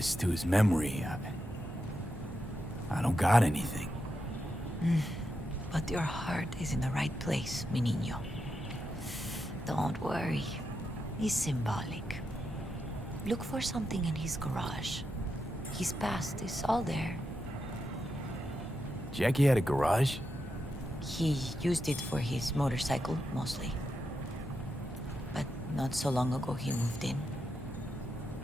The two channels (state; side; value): normal; both; correlation 0.85